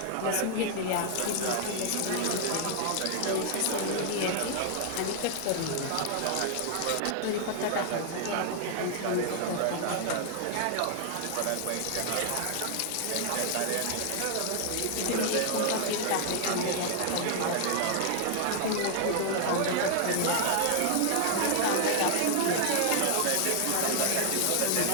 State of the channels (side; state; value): both; different; correlation 0.00